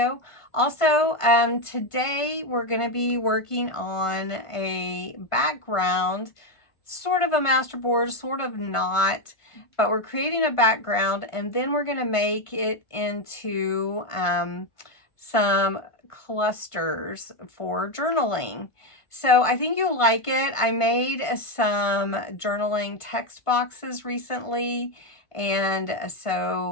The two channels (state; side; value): late; right; 1.5 ms